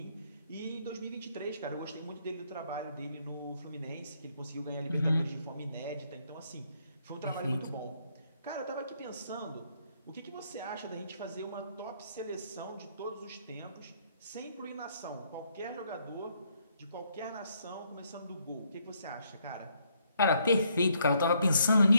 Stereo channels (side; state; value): both; inverted; correlation -0.71